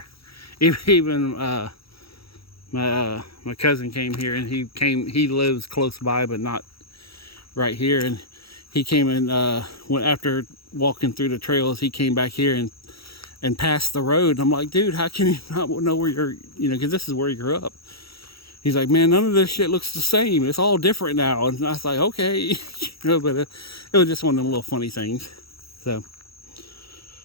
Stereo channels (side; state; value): right; late; 0.76 ms